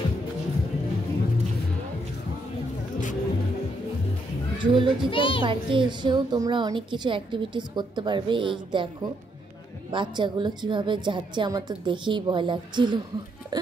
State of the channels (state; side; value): normal; both; correlation 0.75